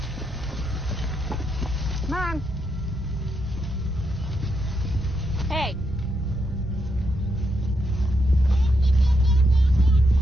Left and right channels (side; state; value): both; normal; correlation 0.81